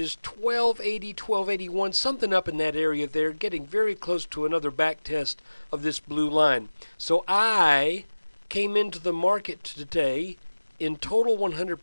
1280, 1281, something up in that area there, getting very close to another back test of this blue line. So I came into the market today in total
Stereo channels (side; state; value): both; inverted; correlation -1.00